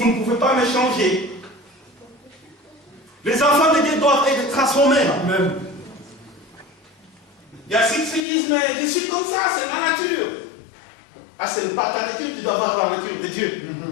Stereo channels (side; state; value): right; drops out; at 8.2 s